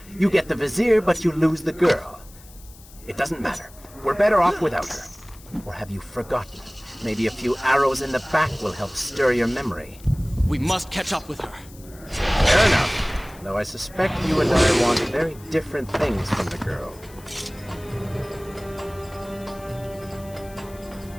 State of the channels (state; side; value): noise; left; hiss, 22 dB below the sound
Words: You get the Vizier, but you lose the girl. It doesn't matter. We're better off without her. Or have you forgotten? Maybe a few arrows in the back will help stir your memory. We must catch up with her. Fair enough. Though I suspect you and I want very different things from the girl.